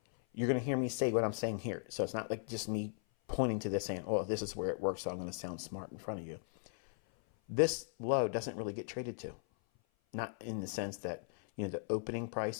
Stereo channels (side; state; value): right; silent; 53 dB below the other